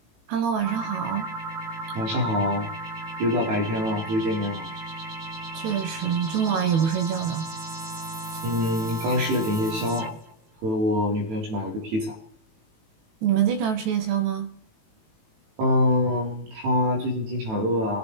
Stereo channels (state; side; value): late; left; 18 ms